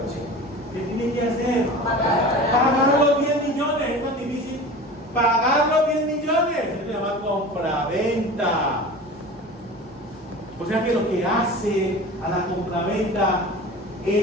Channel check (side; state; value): both; normal; correlation 0.36